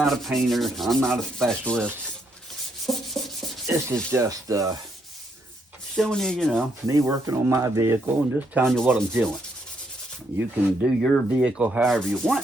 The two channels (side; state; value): both; normal; correlation 0.74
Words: a painter. I'm not a specialist. This is just showing you, you know, me working on my vehicle and just telling you what I'm doing. You can do your vehicle however you want.